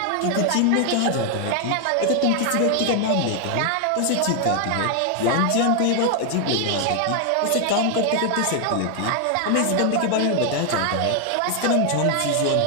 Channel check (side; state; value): both; different; correlation 0.00